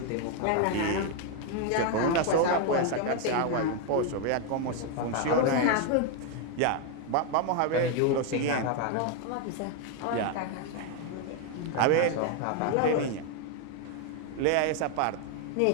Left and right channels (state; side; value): different; both; correlation 0.01